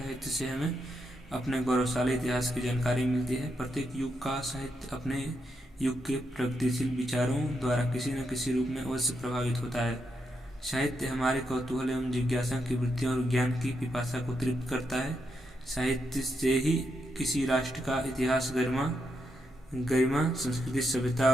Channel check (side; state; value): both; normal; correlation 0.82